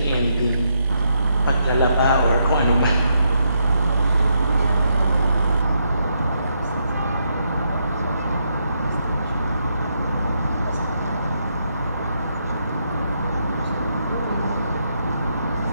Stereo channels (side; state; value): both; inverted; correlation -0.78